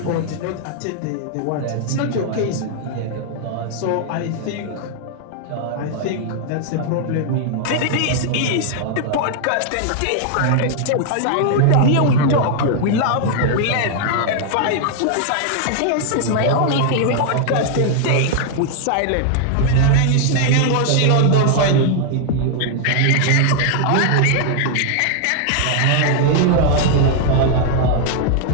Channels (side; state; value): both; different; correlation 0.00